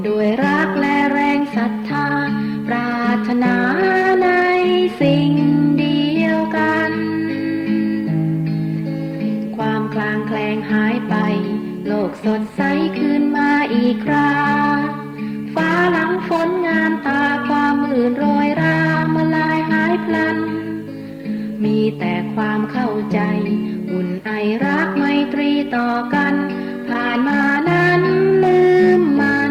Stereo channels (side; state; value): both; identical; correlation 1.00